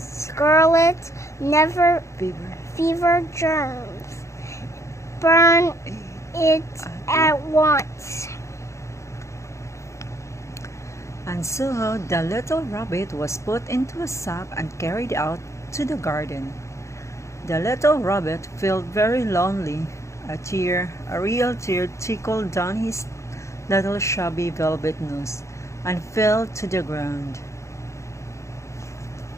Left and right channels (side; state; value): right; late; 0.14 ms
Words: fever germs. Burn it at once. And so the little rabbit was put into a sack and carried out to the garden. The little rabbit felt very lonely. A real tear trickled down his little shabby velvet nose and fell to the ground.